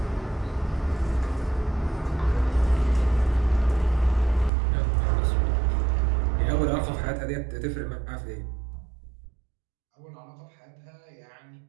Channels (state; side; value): drops out; left; at 4.5 s